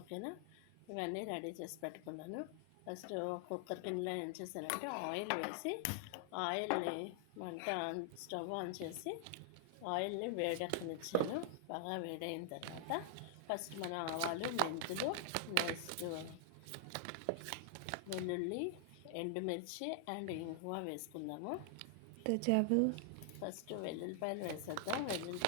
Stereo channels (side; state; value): both; different; correlation 0.00